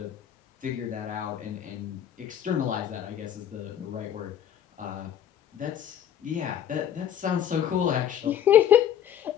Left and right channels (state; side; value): quieter; right; 9.9 dB